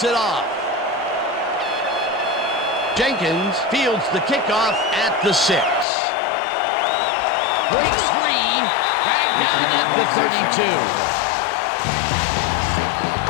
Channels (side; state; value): right; drops out; at 5.9 s